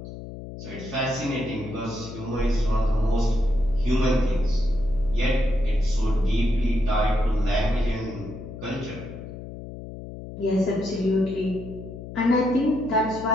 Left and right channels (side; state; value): left; noise; hum, 11 dB below the sound